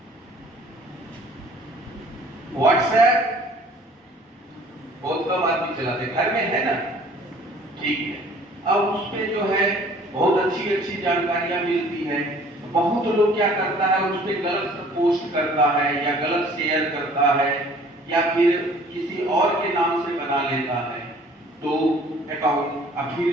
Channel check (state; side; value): normal; both; correlation 0.53